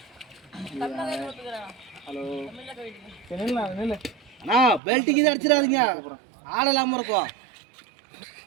ஹலோ நில்லு அண்ணா பெல்ட்டுக்கு இது அடிச்சிடாதீங்க. ஆள் இல்லாமல் இருக்கும்.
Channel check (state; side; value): drops out; left; at 4.8 s